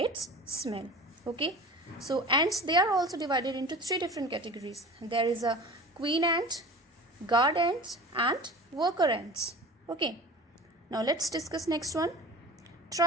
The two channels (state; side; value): normal; both; correlation 0.38